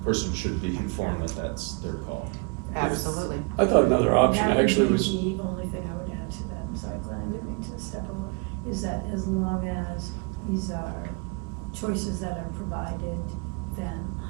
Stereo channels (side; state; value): left; quieter; 32.4 dB